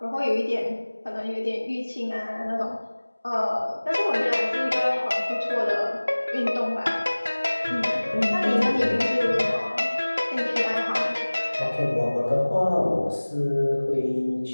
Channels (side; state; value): both; inverted; correlation -1.00